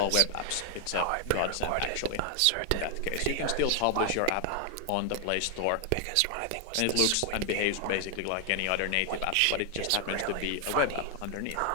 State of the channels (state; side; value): different; both; correlation 0.00